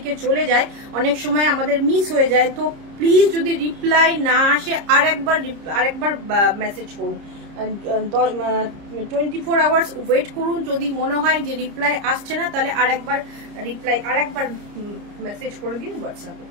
চলে যায়, অনেক সময় আমাদের মিস হয়ে যায়, তো প্লিজ যদি রিপ্লাই না আসে আরেকবার মেসেজ করুন, 24 আওয়ার্স ওয়েট করুন। যদি মনে হয় যে রিপ্লাই আসছে না তাহলে আরেকবার মেসেজ করে দিন হোয়াটসঅ্যাপে।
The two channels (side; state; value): left; late; 30 ms